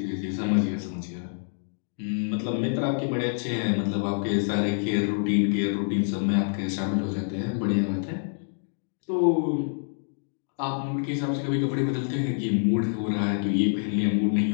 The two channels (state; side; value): silent; right; digital silence